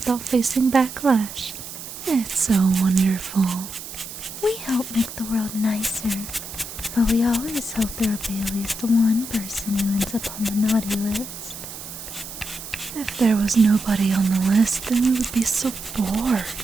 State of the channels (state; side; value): noise; right; hiss, 11 dB below the sound